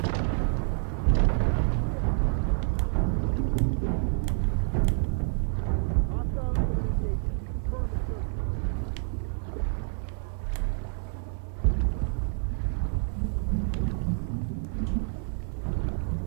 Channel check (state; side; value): silent; left; 59 dB below the other